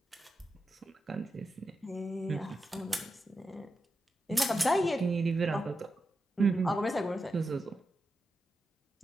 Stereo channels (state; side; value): normal; both; correlation 0.89